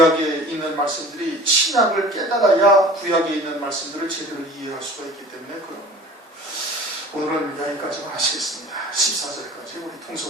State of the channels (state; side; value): normal; both; correlation 0.43